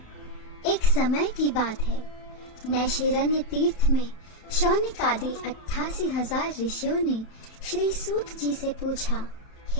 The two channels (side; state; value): right; late; 31 ms